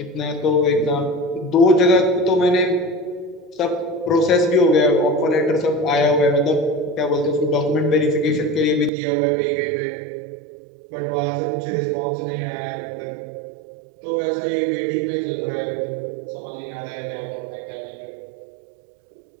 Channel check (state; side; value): drops out; left; at 8.9 s